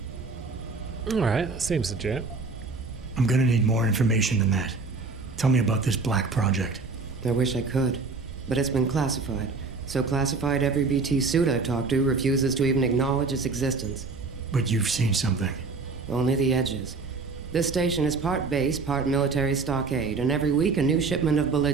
Alright, that seems legit. I'm gonna need more information than that. Tell me about this black project. I wish I could, but it's been classified. So classified every BT suit I've talked to refuses to even acknowledge its existence. But you've seen something. Only the edges. This station is part base, part military stockade, and every week a new shipment of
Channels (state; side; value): quieter; left; 4.2 dB